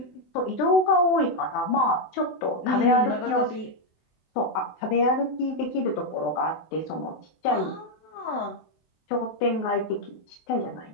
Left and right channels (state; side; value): late; right; 24 ms